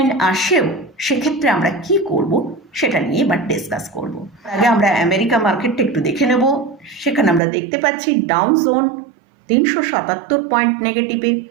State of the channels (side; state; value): left; drops out; at 7.4 s